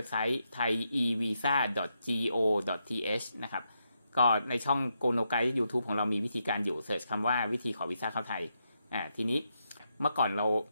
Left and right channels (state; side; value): inverted; both; correlation -0.82